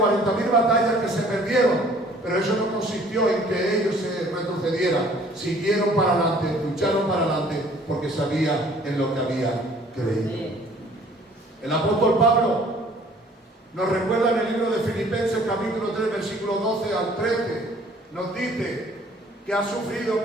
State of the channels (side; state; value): both; normal; correlation 0.55